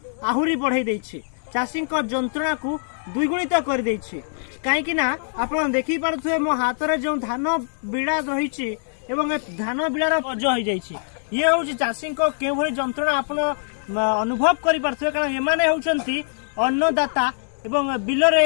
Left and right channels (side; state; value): right; silent; digital silence